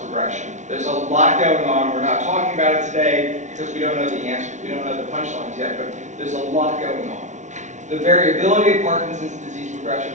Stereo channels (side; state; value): left; late; 0.35 ms